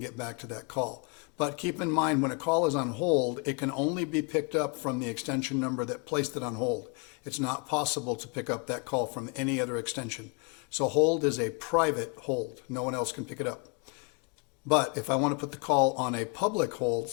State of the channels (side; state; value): right; quieter; 33.4 dB